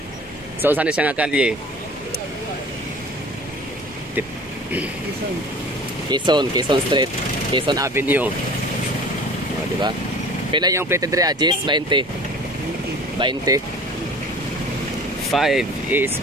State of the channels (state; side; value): normal; both; correlation 0.44